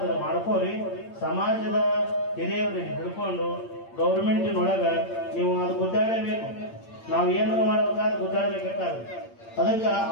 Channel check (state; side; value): late; right; 8.7 ms